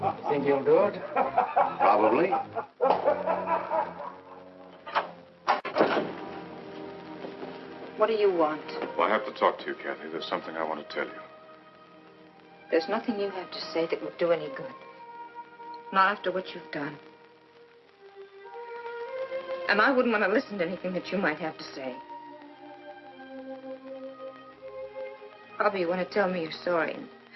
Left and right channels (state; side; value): identical; both; correlation 1.00